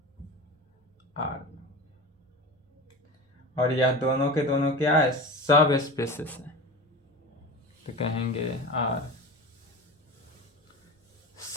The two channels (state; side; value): normal; both; correlation 0.30